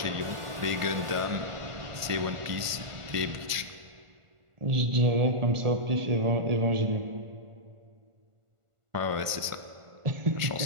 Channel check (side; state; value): left; late; 1.5 ms